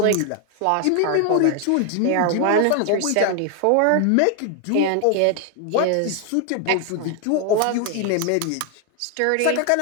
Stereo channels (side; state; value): both; different; correlation 0.00